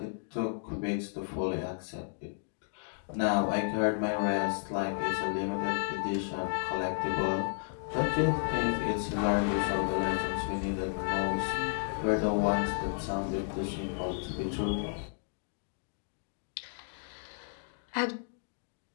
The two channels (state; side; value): silent; right; digital silence